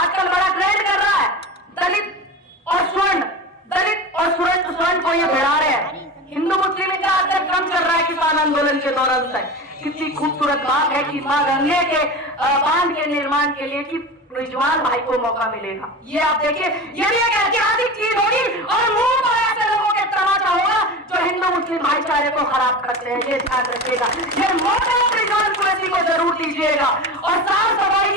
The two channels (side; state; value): both; normal; correlation 0.29